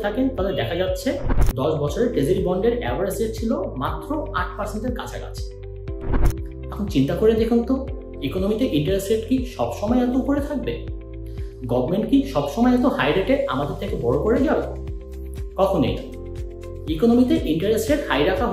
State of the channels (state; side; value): identical; both; correlation 1.00